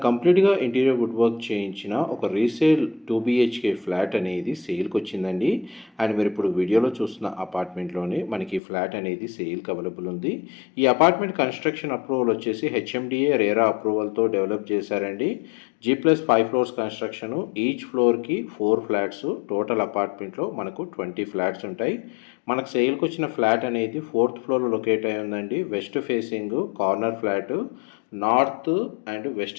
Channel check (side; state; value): right; drops out; at 8.6 s